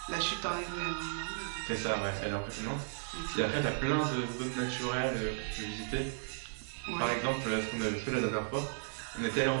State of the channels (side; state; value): left; silent; digital silence